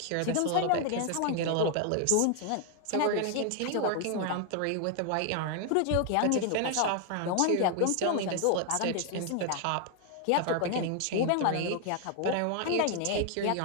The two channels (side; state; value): both; different; correlation 0.00